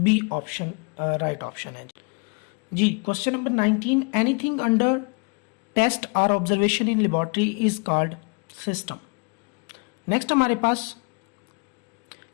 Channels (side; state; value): right; quieter; 33.3 dB